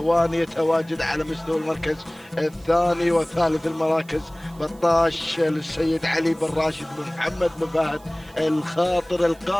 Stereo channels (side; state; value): right; noise; hiss, 27 dB below the sound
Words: يتواجد على مستوى المركز الثاني، وثالث المراكز بطاش للسيد علي بن راشد بن محمد بن فهد الخاطر